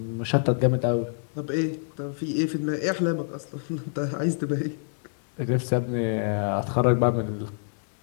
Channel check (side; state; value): right; silent; digital silence